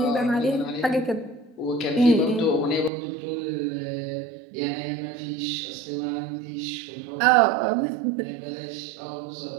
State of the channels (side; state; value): left; drops out; at 2.9 s